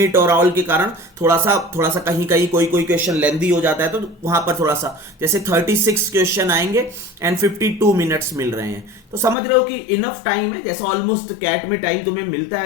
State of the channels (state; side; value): drops out; right; at 9.3 s